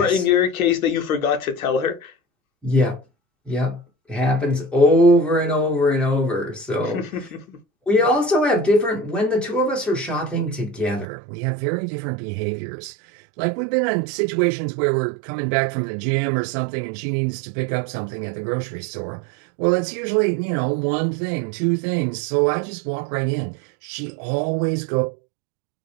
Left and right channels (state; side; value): drops out; left; at 11.1 s